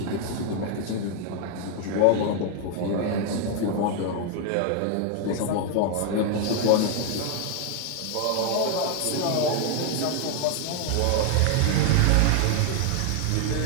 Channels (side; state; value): both; different; correlation 0.00